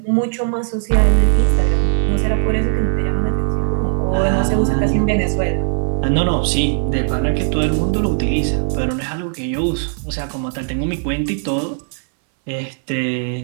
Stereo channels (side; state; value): left; silent; 67 dB below the other